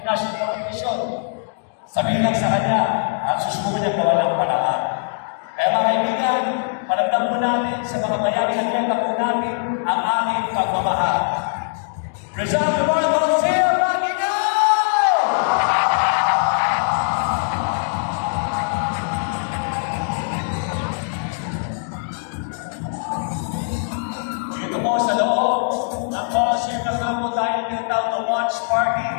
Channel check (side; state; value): right; silent; digital silence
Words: competition. Sabihin lang sa kanya at susubukan niya gawa ng paraan. Kaya mga kaibigan, paramdam po natin sa mga bayaring atleta po natin ang aming pagmamahal. Rizal Memorial Coliseum, Magino! Dito po sa loob ng Coliseum na po tayo tinatawag na watch party